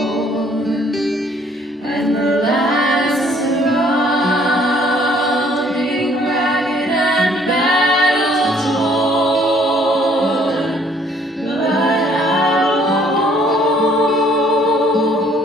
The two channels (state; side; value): normal; both; correlation 0.61